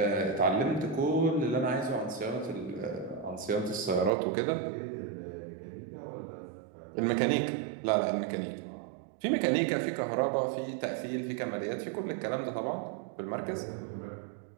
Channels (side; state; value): left; drops out; at 4.1 s